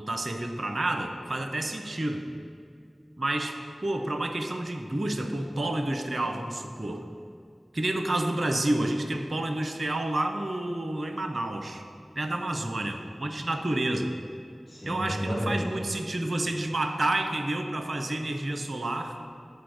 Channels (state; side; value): normal; both; correlation 0.96